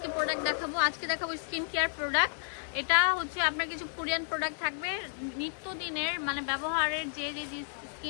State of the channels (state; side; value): silent; right; 57 dB below the other